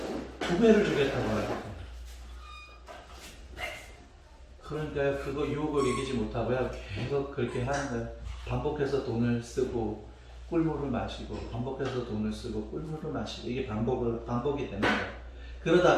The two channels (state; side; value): identical; both; correlation 1.00